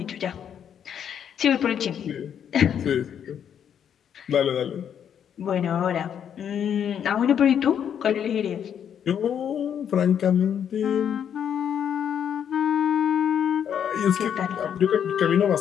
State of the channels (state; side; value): quieter; right; 8.7 dB